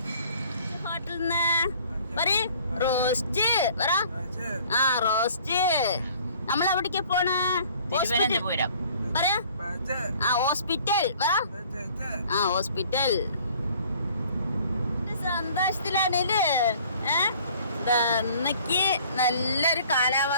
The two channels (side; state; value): both; inverted; correlation -0.54